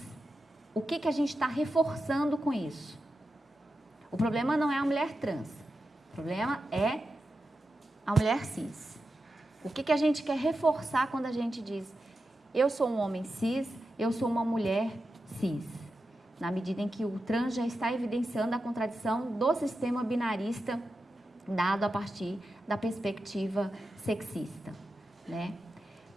O que a gente está reforçando com isso? O problema não é a mulher trans, o problema é a mulher cis. O que a gente quer reforçar quando a gente diz eu sou um homem cis, eu sou uma mulher cis? Na medida em que o trans já está evidenciando a contradição do sistema binarista dado a partir da perspectiva sexista, né?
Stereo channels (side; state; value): both; normal; correlation 0.90